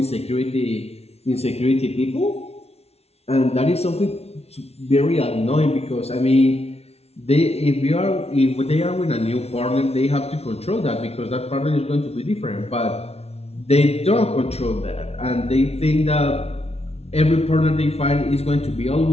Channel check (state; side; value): late; right; 0.30 ms